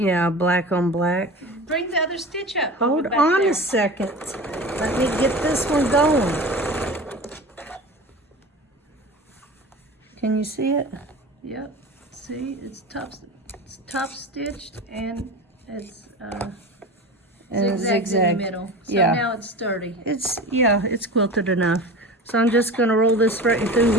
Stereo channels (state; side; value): normal; both; correlation 0.33